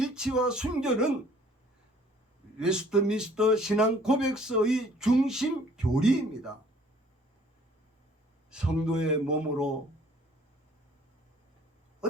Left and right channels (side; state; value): both; normal; correlation 0.57